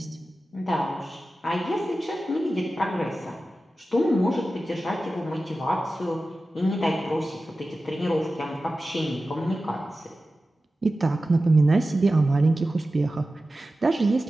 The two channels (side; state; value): both; normal; correlation 0.94